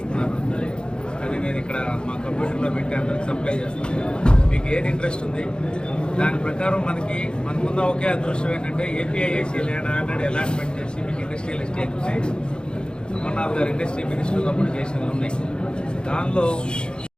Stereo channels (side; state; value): right; late; 0.050 ms